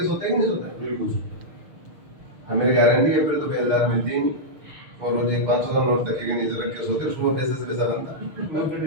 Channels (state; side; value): late; left; 6.6 ms